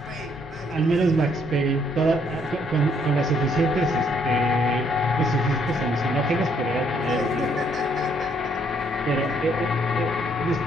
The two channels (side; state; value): both; normal; correlation 0.69